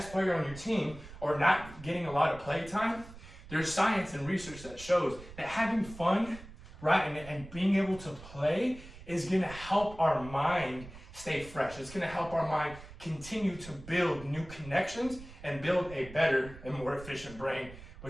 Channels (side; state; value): right; noise; rumble, 16 dB below the sound